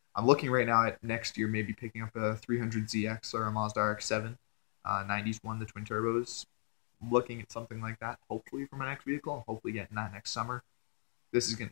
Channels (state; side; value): silent; right; 53 dB below the other